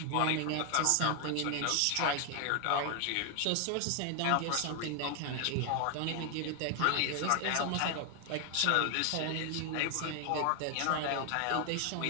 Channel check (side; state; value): both; different; correlation 0.00